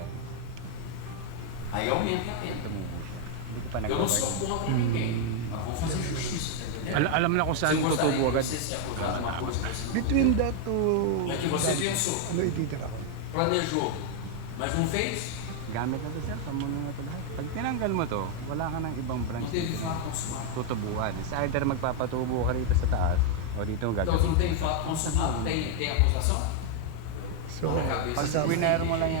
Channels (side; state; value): both; different; correlation 0.01